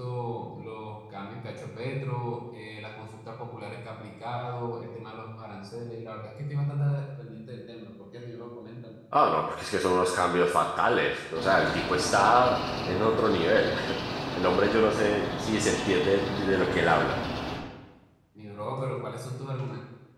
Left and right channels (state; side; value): identical; both; correlation 1.00